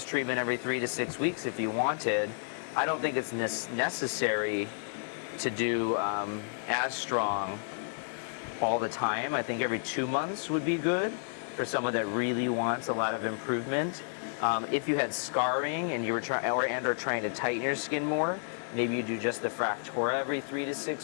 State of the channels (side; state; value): right; silent; 57 dB below the other